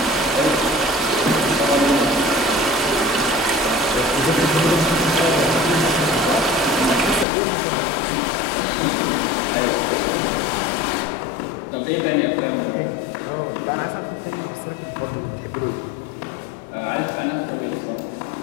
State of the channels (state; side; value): drops out; right; at 7.2 s